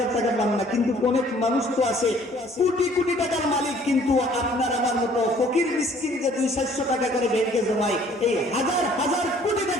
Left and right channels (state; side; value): normal; both; correlation 0.57